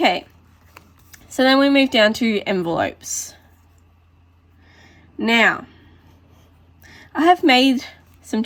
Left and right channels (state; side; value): identical; both; correlation 1.00